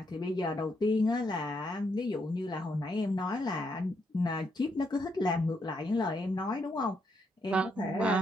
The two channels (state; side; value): normal; both; correlation 0.77